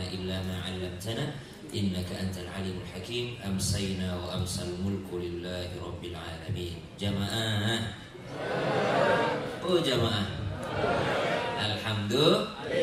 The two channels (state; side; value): identical; both; correlation 1.00